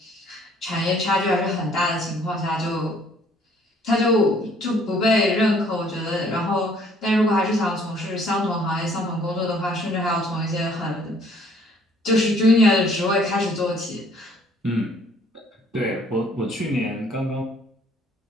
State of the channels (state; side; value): normal; both; correlation 0.60